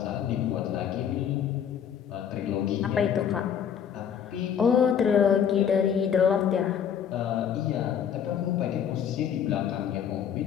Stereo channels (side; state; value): right; quieter; 8.4 dB